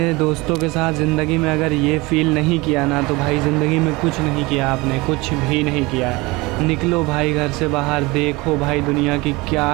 दोस्तों के साथ ज़िंदगी में अगर ये फ़ील नहीं किया ना तो भाई ज़िंदगी में कुछ नहीं किया आपने, कुछ भी नहीं किया। निकलो भाई घर से बाहर, देखो भाई दुनिया की क्या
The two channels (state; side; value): quieter; left; 23.3 dB